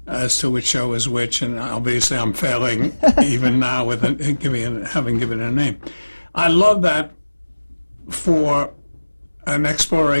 as to which show is which, and obviously I'm failing even now with having given a name. I love that for an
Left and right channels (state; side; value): inverted; both; correlation -1.00